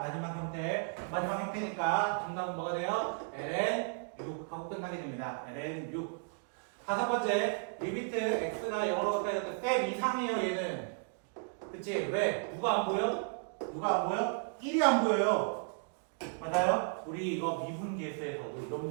마지막 형태. 마지막 형태니까 정답은 뭐가 돼요? ln 6 하고 끝나게 됩니다. ln 6. 다섯 번째, 리미트 x가 0으로 가까이 갈 때 쌤 이상해요 얘는. 그치? 왜? 누가 안 보여? 누가 안 보여? 1이 안 보여요. 맞아요? 우리 이거 미분계수에서도 이런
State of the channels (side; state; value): left; silent; 55 dB below the other